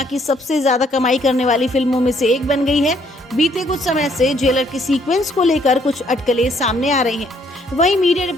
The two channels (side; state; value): both; normal; correlation 0.67